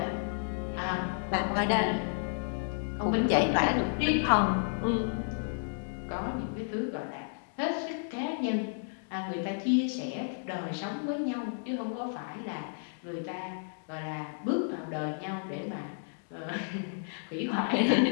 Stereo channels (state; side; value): silent; right; digital silence